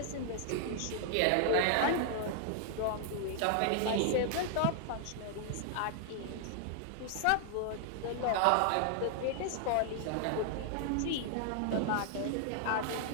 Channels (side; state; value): both; different; correlation 0.00